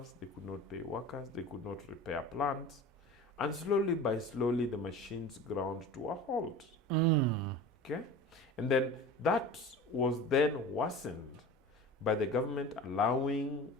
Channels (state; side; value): normal; both; correlation 0.36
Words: they could not pay workers, they could not repair plants. And slowly by slowly, the machines ground to a halt. Okay? And then that was then worsened by the government allowing,